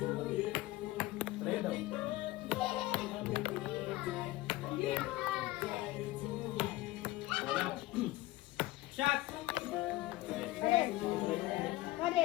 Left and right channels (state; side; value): quieter; right; 17.8 dB